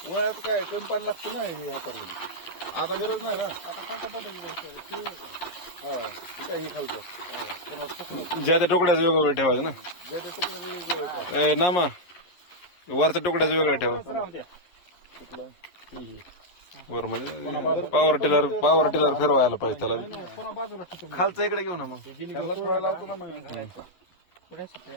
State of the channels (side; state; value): right; late; 11 ms